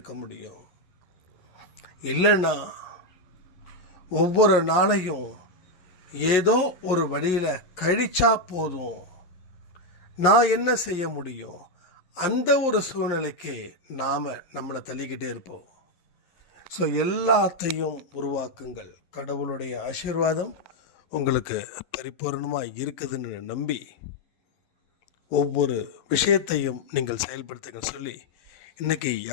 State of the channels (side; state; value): right; late; 11 ms